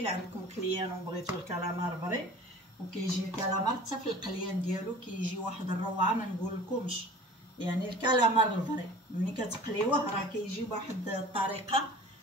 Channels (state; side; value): normal; both; correlation 0.43